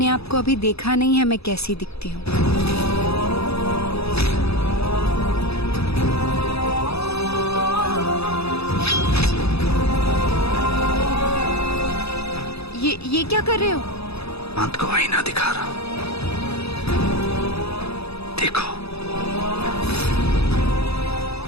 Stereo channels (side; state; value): right; late; 0.78 ms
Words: आप को अभी देखा नहीं है मैं कैसी दिखती हूँ। ये क्या कर रहे हो? अंत को आईना दिखा रहा हूं, देखो